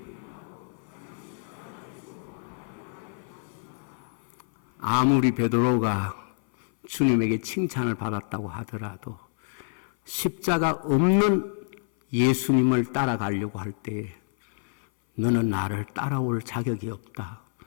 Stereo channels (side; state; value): right; silent; 58 dB below the other